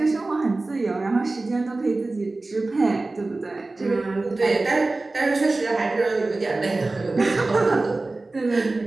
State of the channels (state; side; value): quieter; left; 3.2 dB